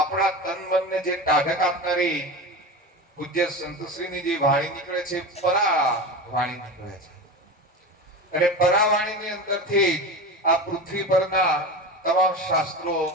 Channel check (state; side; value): normal; both; correlation 0.26